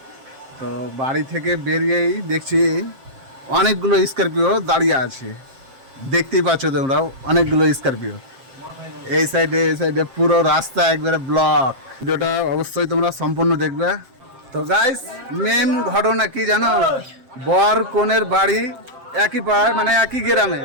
তো বাড়ি থেকে বেরিয়েই দেখছি অনেকগুলো স্করপিও দাঁড়িয়ে আছে। দেখতেই পাচ্ছ তোমরাও, অনেকগুলো স্করপিও। এই সাইডে পুরো রাস্তা একবারে ব্লক। ভিডিওটা অবশ্যই তোমরা সম্পূর্ণ দেখবে। তো গাইস, মেন ঘটনা কি জানো? বর কনের বাড়ি একই পাড়ায়, মানে একই গ্রামে।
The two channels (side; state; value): left; late; 7.5 ms